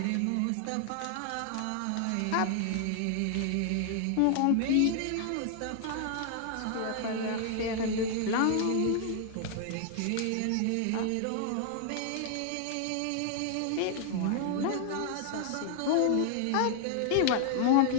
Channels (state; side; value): different; both; correlation 0.00